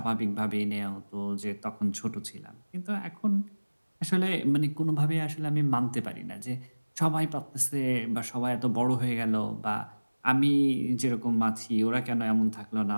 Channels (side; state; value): both; inverted; correlation -1.00